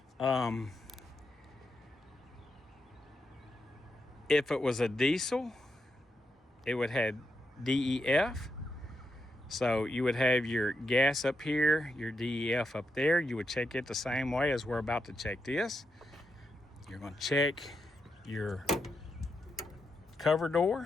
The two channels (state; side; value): normal; both; correlation 0.85